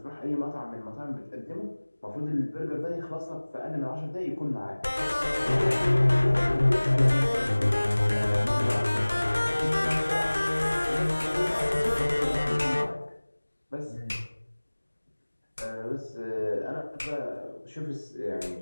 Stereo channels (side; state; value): both; inverted; correlation -1.00